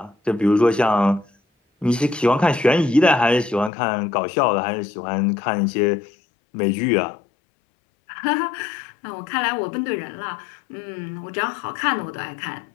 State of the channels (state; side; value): drops out; right; at 3.7 s